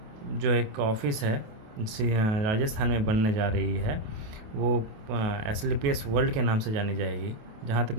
जो एक ऑफिस है राजस्थान में बनने जा रही है, वो एसलीपीएस वर्ल्ड के नाम से जानी जाएगी। जहाँ तक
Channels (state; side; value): late; left; 28 ms